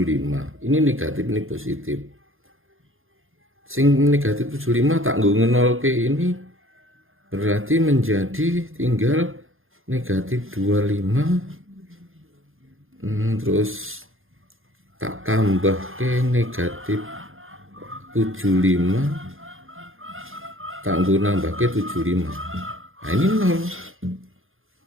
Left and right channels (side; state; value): left; late; 0.60 ms